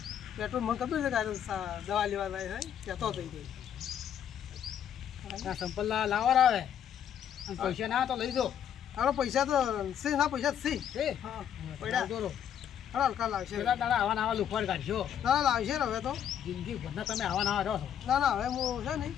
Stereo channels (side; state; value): right; quieter; 9.3 dB